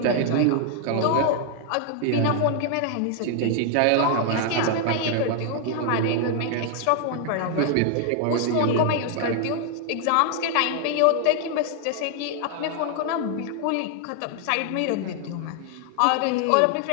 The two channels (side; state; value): both; different; correlation 0.00